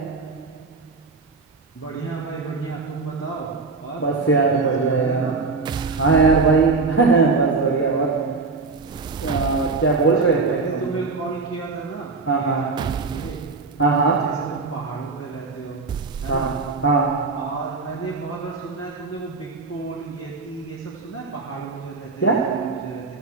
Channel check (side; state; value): left; quieter; 4.0 dB